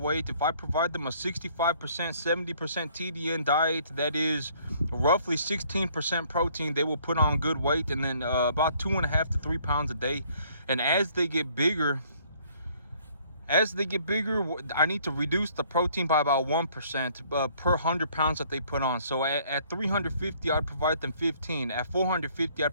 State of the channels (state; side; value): inverted; both; correlation -0.61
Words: if I provide them a 65% 70% TDN diet, that is roughly 16% protein, they will put on good weight, and then about 2.5 to 3 pounds a day. And as they get bigger, I need to reduce the protein by about 1% per 100 pounds that they put on. So at 350, I'd provide them 15. At 450, I'd